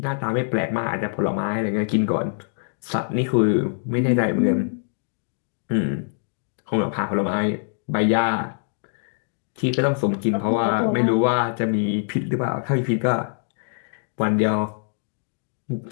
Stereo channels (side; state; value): right; silent; digital silence